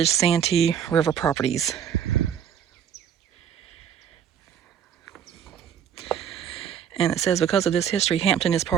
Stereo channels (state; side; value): quieter; left; 8.7 dB